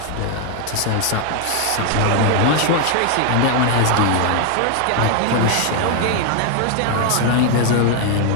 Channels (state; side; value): different; both; correlation 0.00